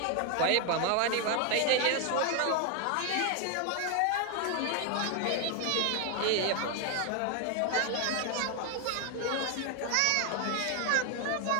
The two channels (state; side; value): different; both; correlation 0.01